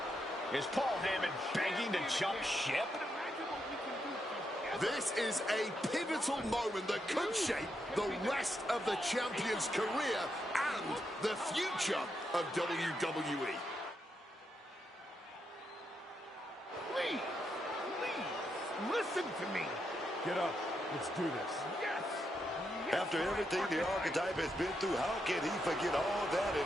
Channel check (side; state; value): both; normal; correlation 0.82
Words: Is Paul Heyman begging to jump ship? This is a pivotal moment that could shape the rest of the champion's career and the future of WWE. Please, listen to me. Get up. Let's do this. Yes. After everything the Archetype has been through, how can he forget all that